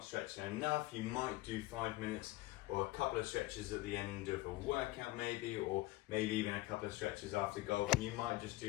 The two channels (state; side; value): quieter; right; 18.7 dB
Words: stretching enough. You might do 5 minutes or a couple of stretches at the end of a workout maybe, or maybe even a couple of stretches after golf. And you might just